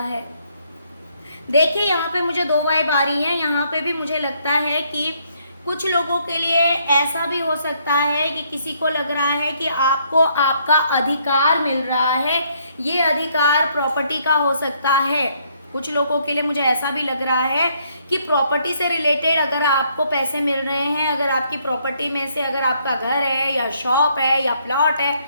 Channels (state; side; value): inverted; both; correlation -0.69